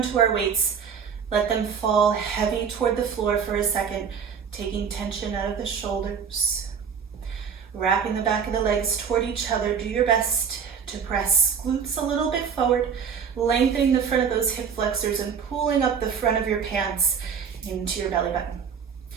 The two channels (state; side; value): quieter; left; 6.8 dB